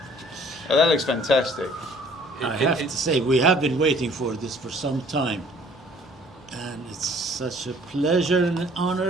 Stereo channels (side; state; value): both; normal; correlation 0.56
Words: Oh, that looks fantastic. I have to say, we have been waiting for this for some time. And it's such a pleasure and an honor